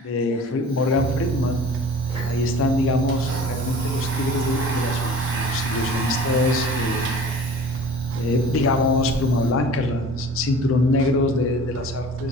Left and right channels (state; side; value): normal; both; correlation 0.43